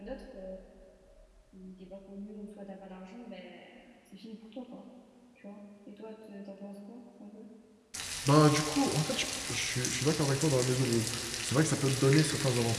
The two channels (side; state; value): both; identical; correlation 1.00